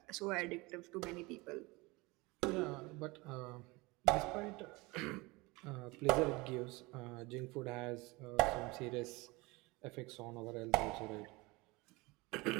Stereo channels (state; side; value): quieter; left; 23.9 dB